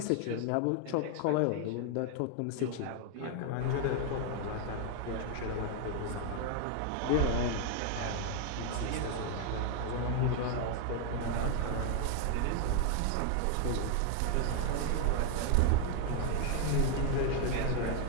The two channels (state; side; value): different; both; correlation 0.00